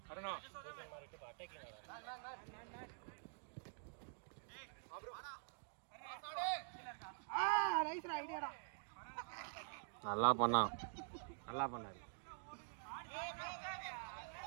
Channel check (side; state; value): left; silent; digital silence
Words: அருணா நல்லா பண்ணான் நல்லா பண்ணாரு